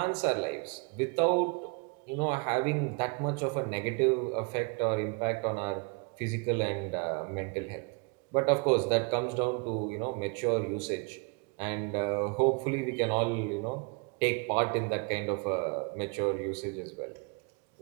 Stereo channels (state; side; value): quieter; left; 31.8 dB